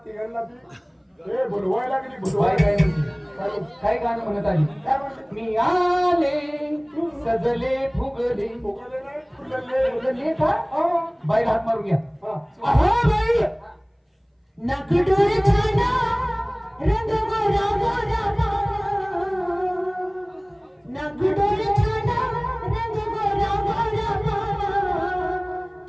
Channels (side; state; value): both; identical; correlation 1.00